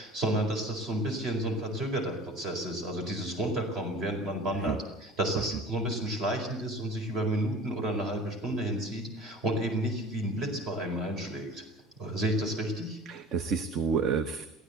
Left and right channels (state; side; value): normal; both; correlation 0.41